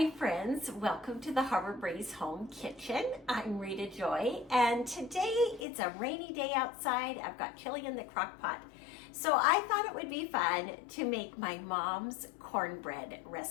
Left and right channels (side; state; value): right; drops out; at 5.7 s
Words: friends, welcome to the Harbor Breeze Home Kitchen. I'm Rita Joy, and today it's a rainy day outside. I've got chili in the crock pot. So I thought it would be fun to make my mom's cornbread